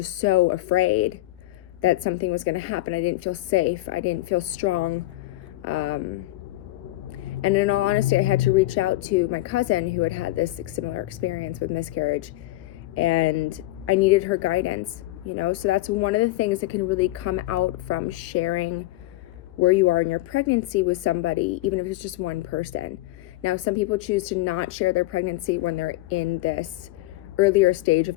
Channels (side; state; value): right; quieter; 18.0 dB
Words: so afraid that something was going to happen. I didn't feel safe. I didn't feel strong. And in all honesty, I had to reach out to my cousin who had had this similar experience with miscarriage, and I needed her guidance, so that's one of the things that can really come out from sharing where you are in your pregnancy with somebody, even if it's just one person. Now, some people choose to not share their pregnancy when they're in this earlier stage